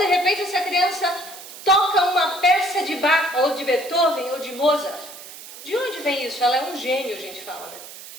repente essa criança toca uma peça de Bach, ou de Beethoven, ou de Mozart. De onde vem isso? Ela é um gênio, a gente fala, né?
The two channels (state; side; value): noise; right; hiss, 15 dB below the sound